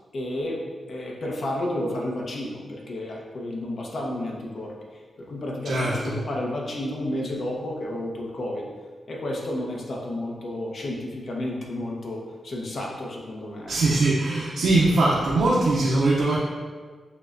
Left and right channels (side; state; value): both; normal; correlation 0.85